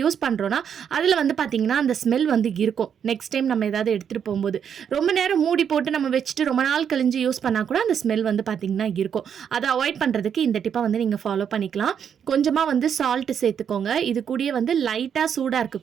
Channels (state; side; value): quieter; left; 8.0 dB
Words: பண்ணுறோன்னா அதில் வந்து பார்த்திங்கன்னா அந்த ஸ்மெல் வந்து இருக்கும். நெக்ஸ்ட் டைம் நம்ம ஏதாவது எடுத்துகிட்டு போகும்போது ரொம்ப நேரம் மூடி போட்டு நம்ம வச்சுட்டு ரொம்ப நாள் கழிஞ்சு யூஸ் பண்ணால் கூட அந்த ஸ்மெல் வந்து பார்த்திங்கன்னா இருக்கும். அதை அவாய்ட் பண்ணுறதுக்கு இந்த டிப்பை வந்து நீங்கள் ஃபாலோ பண்ணிக்கலாம். கொஞ்சமாக வந்து சால்ட்டு சேர்த்துக்கோங்க. இது கூடயே வந்து லைட்டாக சூடாக